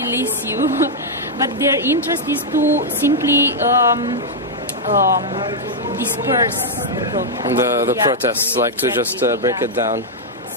Release you. But their interest is to simply disperse the protests, like to just break it down.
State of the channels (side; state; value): both; normal; correlation -0.04